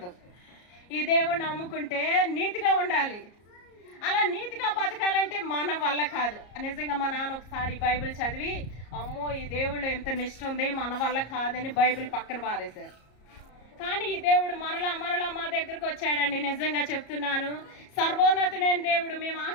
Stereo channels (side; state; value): right; late; 34 ms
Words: ఈ దేవుడిని నమ్ముకుంటే నీతిగా ఉండాలి. అలా నీతిగా బతకాలంటే మన వల్ల కాదు. నిజంగా మా నాన్న ఒకసారి బైబిల్ చదివి, అమ్మో ఈ దేవుళ్ళు ఎంత నిష్ఠ ఉంది, మన వల్ల కాదని బైబిల్ పక్కన పారేశారు. కానీ ఈ దేవుడు మరలా మా దగ్గరకు వచ్చాడండి. నిజంగా చెప్తున్నాను, సర్వోన్నతుడైన దేవుడు. మేము